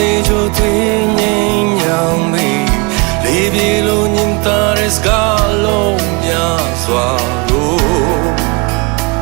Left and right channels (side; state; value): left; quieter; 29.4 dB